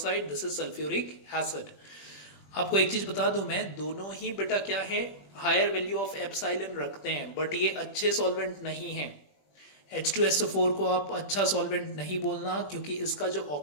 this is sulphuric acid. आपको एक चीज बता दूं मैं, दोनों ही बेटा क्या है, हायर वैल्यू ऑफ एप्सिलॉन रखते हैं, बट ये अच्छे सॉल्वेंट नहीं है। H2SO4 को आप अच्छा सॉल्वेंट नहीं बोलना क्योंकि इसका जो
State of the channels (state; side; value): late; right; 21 ms